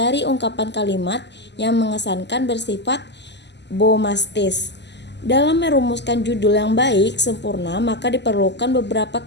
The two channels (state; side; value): late; right; 0.50 ms